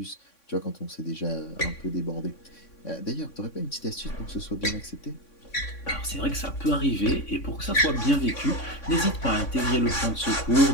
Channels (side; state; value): right; late; 3.6 ms